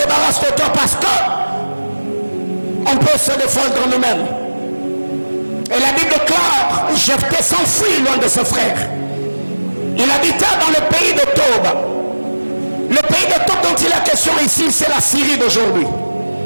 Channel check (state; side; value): inverted; both; correlation -1.00